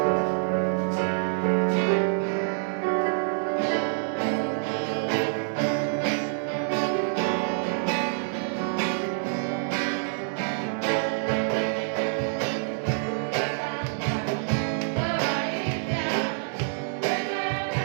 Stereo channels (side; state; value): left; silent; 60 dB below the other